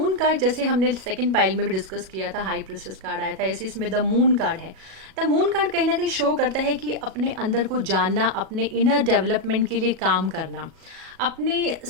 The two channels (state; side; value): late; left; 37 ms